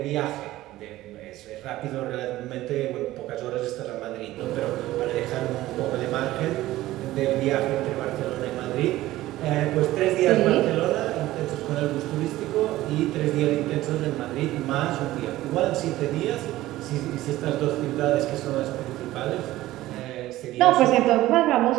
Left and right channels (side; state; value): left; quieter; 16.1 dB